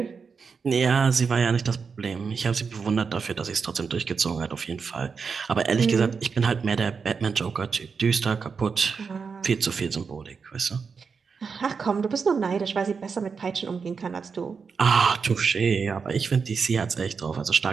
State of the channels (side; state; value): left; quieter; 5.5 dB